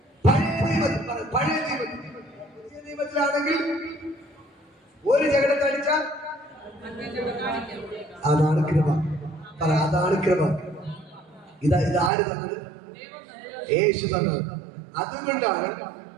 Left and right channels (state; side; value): drops out; left; at 12.1 s